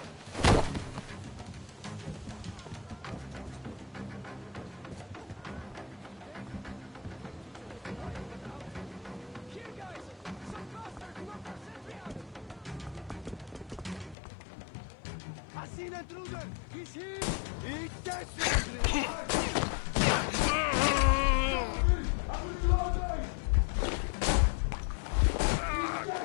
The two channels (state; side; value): drops out; right; at 14.2 s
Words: I seen an intruder! He's here! Eat this!